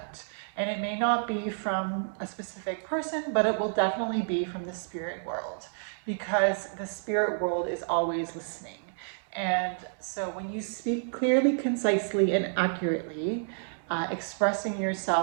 And it may not be from a specific person, but it will definitely be from the spirit world, because the spirit world is always listening. And so when you speak clearly, concisely, and accurately, expressing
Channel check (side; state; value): left; silent; digital silence